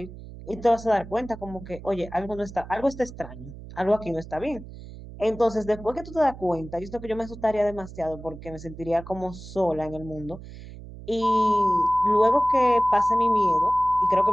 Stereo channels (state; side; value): noise; right; hum, 15 dB below the sound